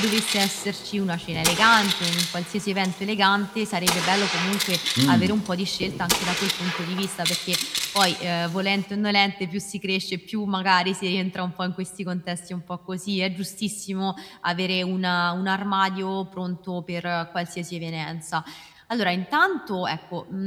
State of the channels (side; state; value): both; identical; correlation 1.00